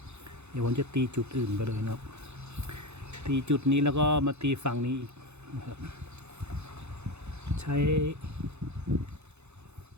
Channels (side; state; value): left; late; 0.81 ms